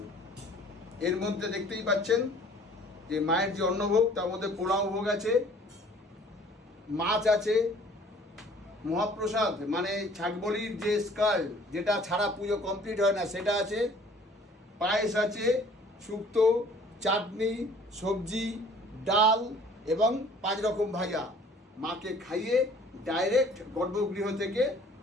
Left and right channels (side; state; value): both; normal; correlation 0.53